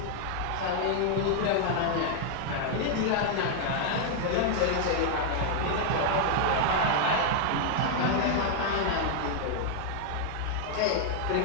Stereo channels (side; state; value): both; different; correlation 0.00